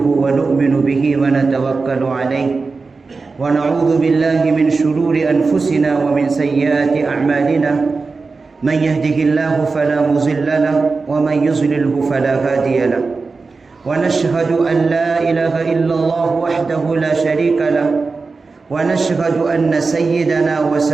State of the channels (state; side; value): quieter; left; 4.2 dB